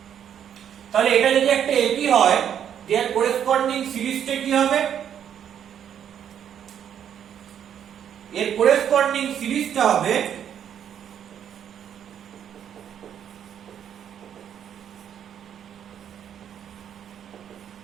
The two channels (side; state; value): left; quieter; 9.2 dB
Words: তাহলে এটা যদি একটা AP হয়, their corresponding সিরিজটা কি হবে? এর corresponding সিরিজটা হবে